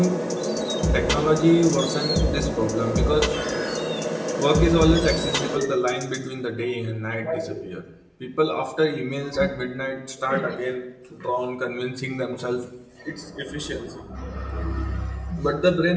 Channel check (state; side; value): identical; both; correlation 1.00